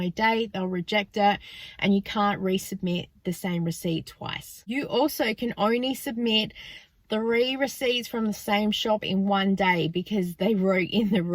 date, they'll reject it, and you can't resubmit the same receipt twice. You also can only submit 3 receipts from the same shop in one day, because they wrote in the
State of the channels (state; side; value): identical; both; correlation 1.00